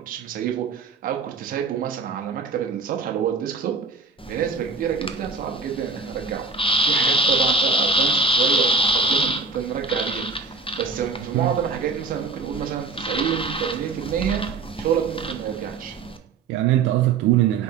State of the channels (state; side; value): quieter; left; 4.5 dB